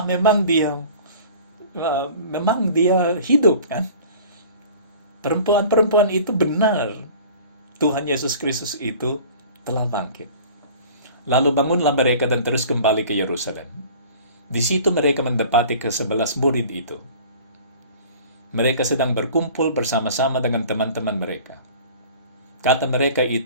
memang dia hidup kan. Perempuan-perempuan itu benar. Tuhan Yesus Kristus itu telah bangkit. Lalu bangunlah mereka dan terus kembali ke Yerusalem. Di situ mereka mendapati ke-11 murid itu. Mereka sedang berkumpul bersama-sama dengan teman-teman mereka. Kata mereka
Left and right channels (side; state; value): both; inverted; correlation -0.45